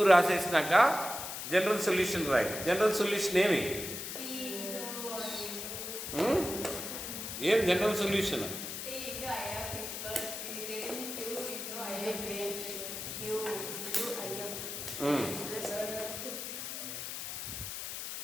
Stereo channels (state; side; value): noise; left; hiss, 6 dB below the sound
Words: రాసేసినాక జనరల్ సొల్యూషన్ రాయి. జనరల్ సొల్యూషన్ ఏమి? ఏం జనరల్ సొల్యూషన్?